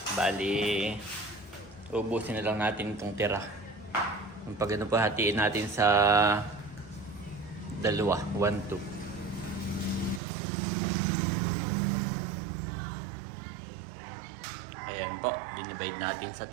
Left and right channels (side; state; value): left; drops out; at 10.2 s